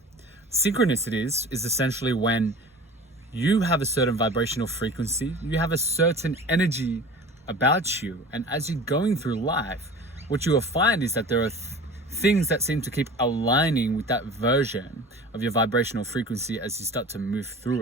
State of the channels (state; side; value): normal; both; correlation 0.39